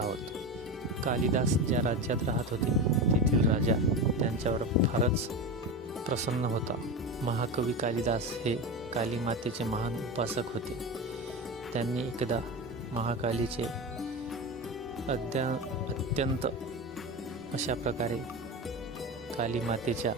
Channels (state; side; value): normal; both; correlation 0.23